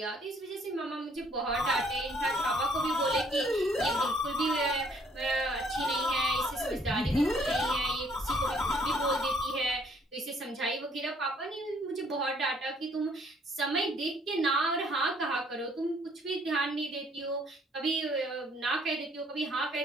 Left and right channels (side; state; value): both; normal; correlation 0.63